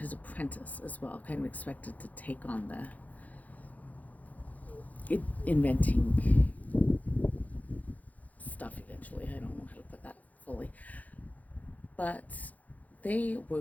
apprentice as well, kind of expected to take on the inventing stuff eventually. I don't know how to put that fully. But they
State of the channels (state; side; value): late; right; 0.077 ms